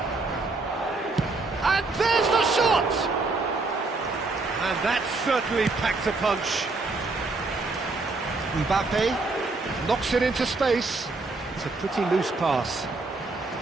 And there's the shot! And that certainly packed a punch. Mbappe knocks it into space. It's a pretty loose pass.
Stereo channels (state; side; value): quieter; left; 3.5 dB